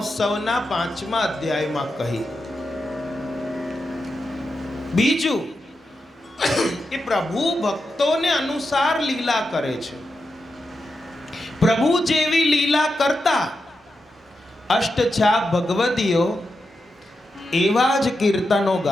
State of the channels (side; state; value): both; normal; correlation 0.88